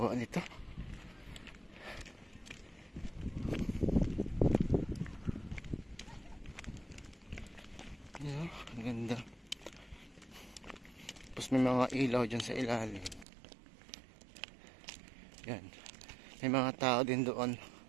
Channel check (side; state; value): left; drops out; at 13.2 s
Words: nito. Yan, ang ganda. Tapos may mga ilaw dyan sa ilalim. Yan, may mga tao din doon.